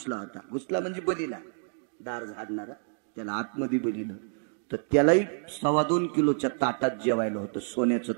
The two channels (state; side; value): silent; left; 59 dB below the other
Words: होता. घुसला म्हणजे बलीला, दार झाडणारा त्याला आतमध्ये बलीला. तर त्यालाही 2.25 किलोच्या ताटात जेवायला होतं. सोन्याचं